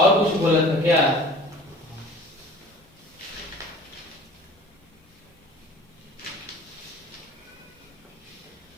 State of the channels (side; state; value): both; normal; correlation 0.45